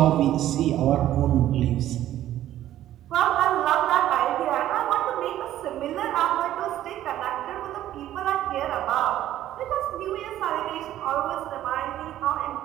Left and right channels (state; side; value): quieter; left; 12.9 dB